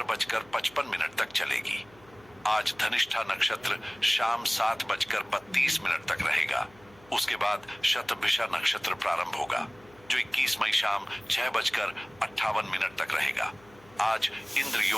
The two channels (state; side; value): noise; left; hum, 26 dB below the sound